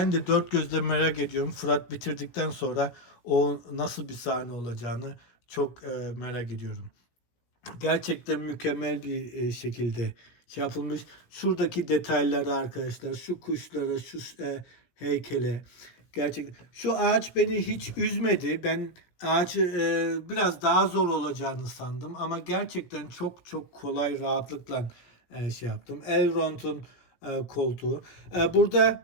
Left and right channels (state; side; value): late; right; 16 ms